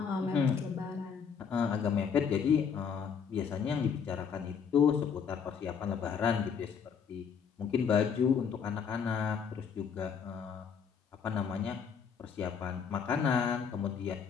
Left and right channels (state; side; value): quieter; right; 6.8 dB